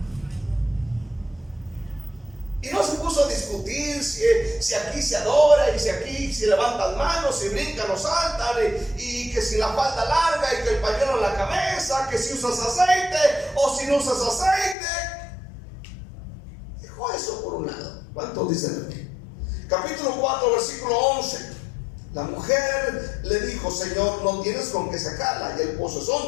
Y no se puso a discutir si aquí se adora y si aquí se levantan manos, si brincan o saltan, y que si la falda larga y que el pañuelo en la cabeza, que si usas aceite o si no usas aceite. Dejó eso por un lado. ¿Cuántos dicen aquí? Capítulo 4, versículo 11. La mujer le dijo: Señor, no tienes con qué sacarla y el pozo es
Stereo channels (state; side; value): drops out; right; at 14.8 s